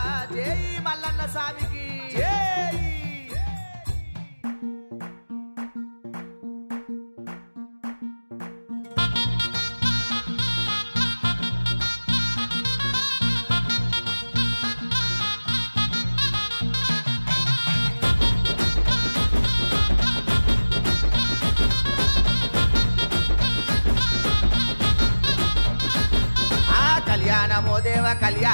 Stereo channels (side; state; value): both; inverted; correlation -1.00